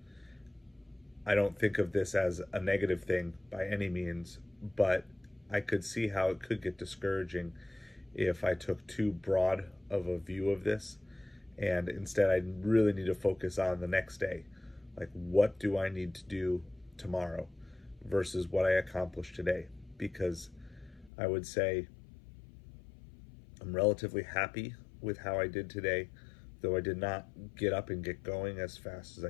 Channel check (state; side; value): drops out; right; at 21.1 s